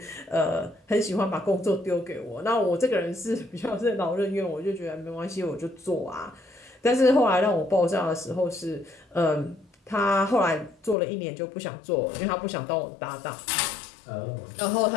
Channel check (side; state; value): right; drops out; at 11.0 s